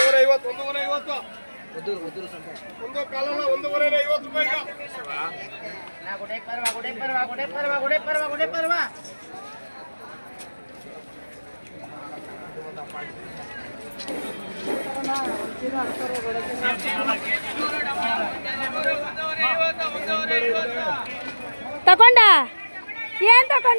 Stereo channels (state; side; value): inverted; both; correlation -1.00